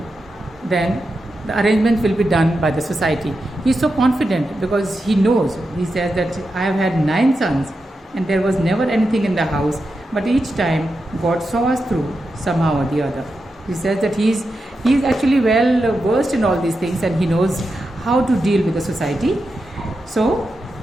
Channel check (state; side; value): normal; both; correlation 0.88